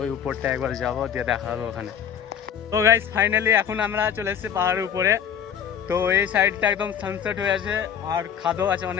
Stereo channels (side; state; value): right; quieter; 8.4 dB